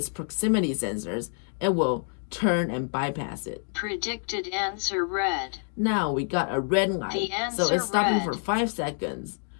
proximity sensors, it will turn and bypass it. Predicted answer red. Now we got a red light, The so answer it's stopping red. for 5 seconds.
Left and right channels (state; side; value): silent; right; 58 dB below the other